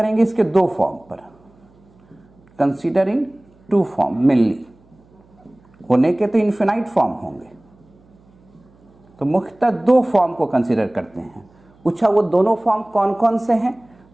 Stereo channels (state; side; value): noise; right; hum, 30 dB below the sound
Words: इसके 2 फॉर्म पर। कंसीडरिंग 2 फॉर्म मेनली, होने के तो इन्फिनाइट फॉर्म होंगे, तो मुख्यतः 2 फॉर्म को कंसीडर करते हैं। पूछा वो दोनों फॉर्म कौन कौन से हैं?